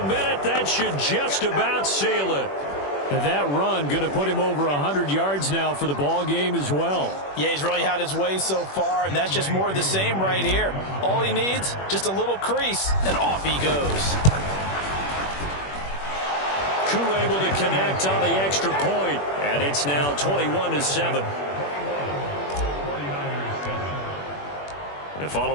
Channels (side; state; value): right; late; 21 ms